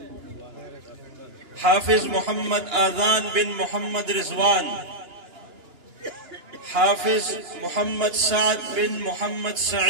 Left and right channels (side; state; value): left; late; 2.9 ms